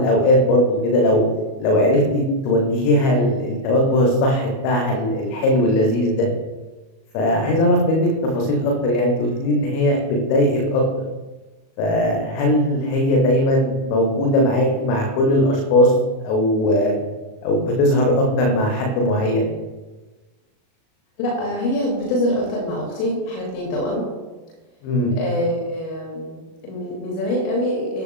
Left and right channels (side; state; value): right; late; 37 ms